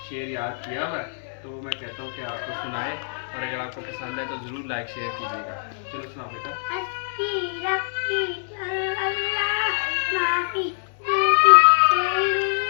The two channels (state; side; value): silent; right; digital silence